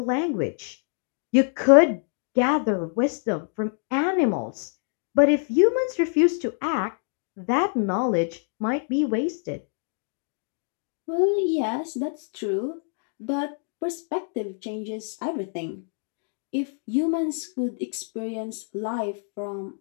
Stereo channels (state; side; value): silent; right; 55 dB below the other